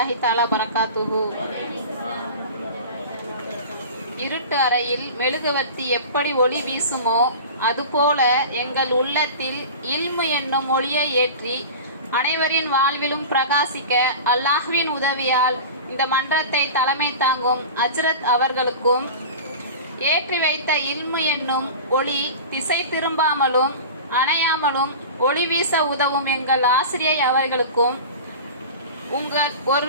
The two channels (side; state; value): both; inverted; correlation -0.33